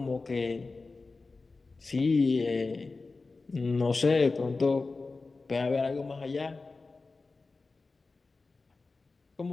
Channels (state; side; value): quieter; right; 3.8 dB